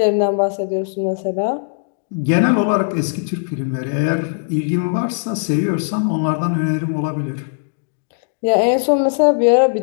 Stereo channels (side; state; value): right; silent; digital silence